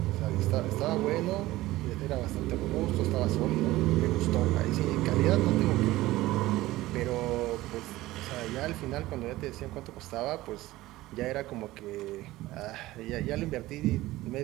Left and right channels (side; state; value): left; quieter; 17.4 dB